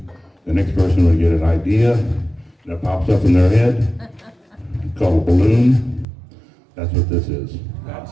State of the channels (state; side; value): drops out; left; at 6.1 s